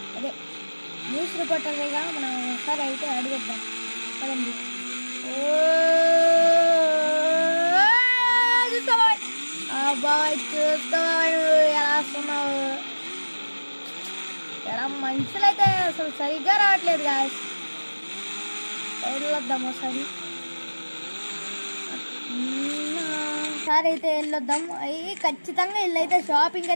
అదే న్యూస్ రిపోర్టర్గా మనం ఒకసారి అయితే అడిగిద్దాం. పదండి. బాబాయ్ చూస్తావా ఎలా వస్తున్నావు? ఎలా మనుషులైతే అసలు సరిగ్గా రావట్లేదు గాయస్. వెళ్ళొద్దాం ఒకసారి అయితే వెళ్ళొద్దాం. అవి ఖచ్చితంగా వీళ్ళైతే షాపింగ్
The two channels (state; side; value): inverted; both; correlation -1.00